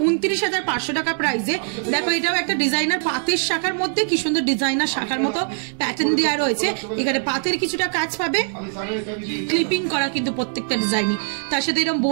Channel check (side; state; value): left; silent; digital silence